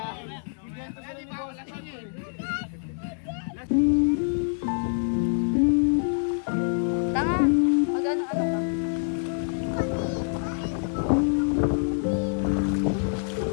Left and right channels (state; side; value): silent; right; digital silence